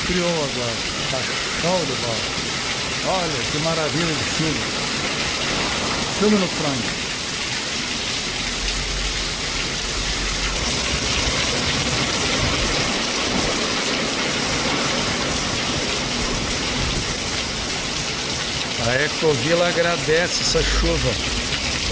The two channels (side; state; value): both; identical; correlation 1.00